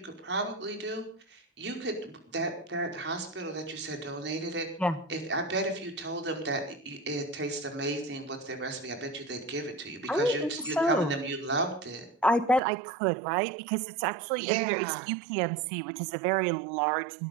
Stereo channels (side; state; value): left; drops out; at 12.6 s